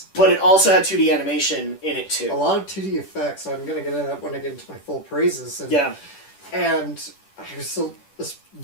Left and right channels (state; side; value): late; right; 10 ms